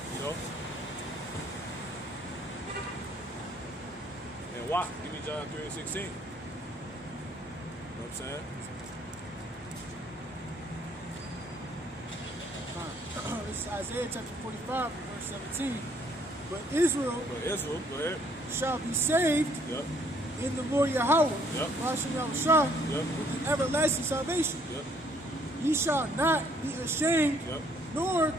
You know? And why? Give me John 3 and 16. You know what I'm saying? This is Isaiah chapter 45, verse 17. But Israel Go ahead. shall be saved Yep. in the Lord Yahweh, Yep. Hashem Yahushua, Yep. with an everlasting salvation. Yep. Ye shall not be ashamed Yep. nor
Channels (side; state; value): both; normal; correlation 0.65